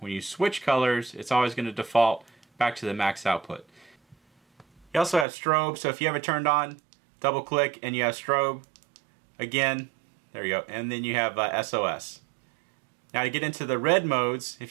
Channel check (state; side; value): drops out; left; at 5.2 s